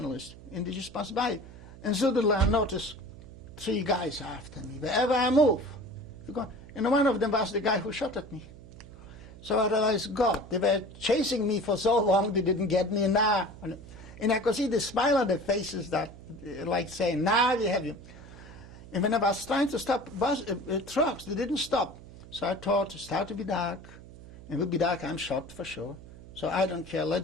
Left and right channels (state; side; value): noise; right; hum, 17 dB below the sound